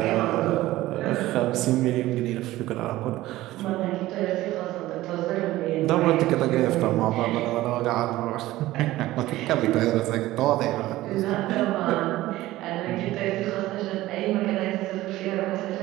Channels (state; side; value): quieter; left; 16.6 dB